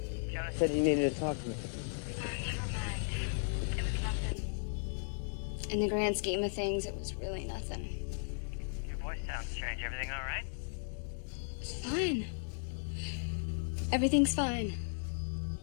Jonas Said he needed to talk to you. Never mind. It was nothing. In the grand scheme of things, it was really nothing. your voice sounds strange. Everything all right? It's fine. Everything's fine.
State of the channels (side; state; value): right; silent; digital silence